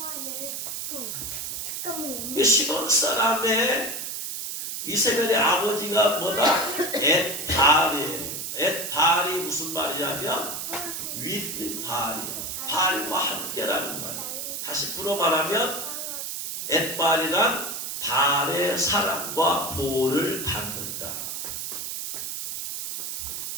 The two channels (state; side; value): noise; right; hiss, 5 dB below the sound